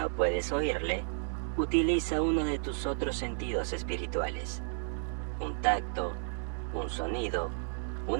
puedes oírle, utiliza uno de tus otros sentidos espirituales. Un tacto, un sonido,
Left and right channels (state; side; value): silent; left; digital silence